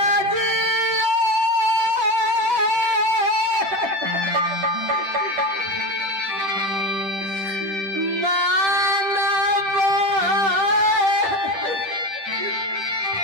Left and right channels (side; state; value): left; late; 10 ms